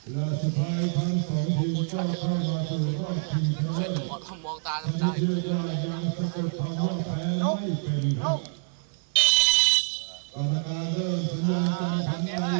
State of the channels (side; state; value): left; silent; digital silence